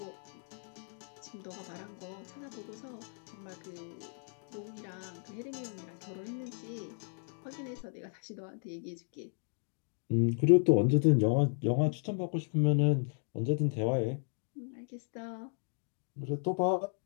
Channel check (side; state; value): right; silent; 55 dB below the other